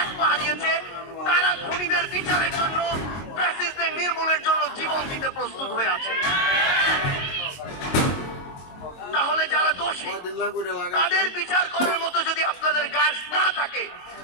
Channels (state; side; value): late; right; 22 ms